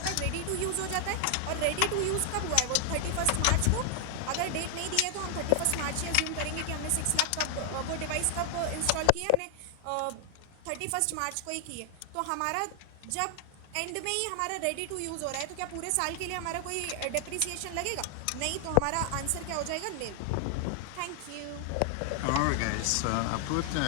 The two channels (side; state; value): both; different; correlation 0.00